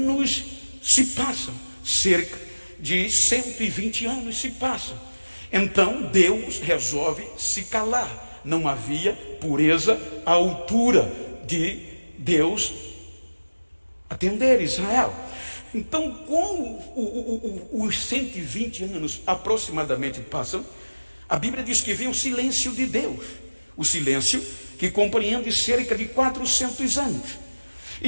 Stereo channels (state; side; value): inverted; both; correlation -1.00